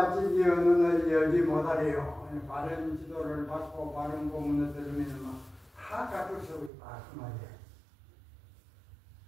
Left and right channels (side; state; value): left; drops out; at 6.7 s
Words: 진리의 눈을 열지 못하래요. 바른 지도를 받고 바른 법문을 들으면 다 갖출 수 있다 그 말이에요.